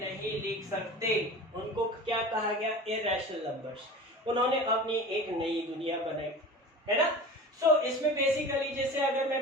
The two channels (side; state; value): both; normal; correlation 0.36